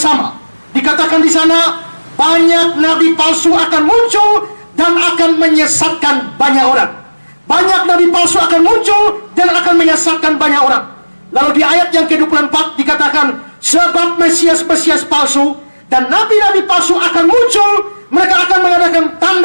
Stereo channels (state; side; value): inverted; both; correlation -1.00